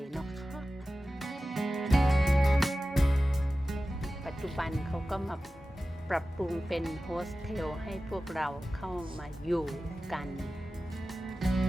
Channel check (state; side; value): normal; both; correlation 0.95